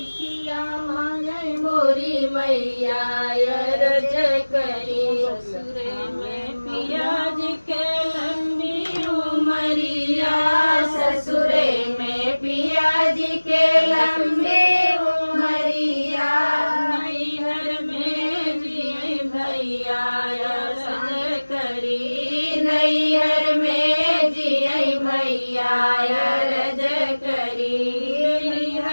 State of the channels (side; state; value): both; inverted; correlation -1.00